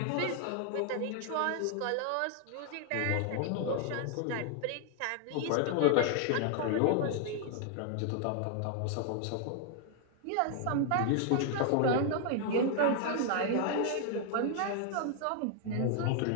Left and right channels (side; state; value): both; different; correlation 0.00